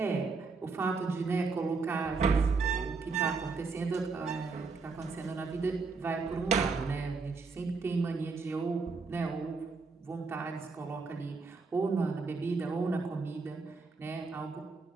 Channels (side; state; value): left; quieter; 4.4 dB